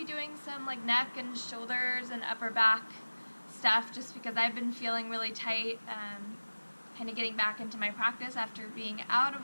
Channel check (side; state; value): both; inverted; correlation -1.00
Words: doing some like neck and shoulders and upper back stuff just because I've been feeling really tight, kind of getting back into my practice after being out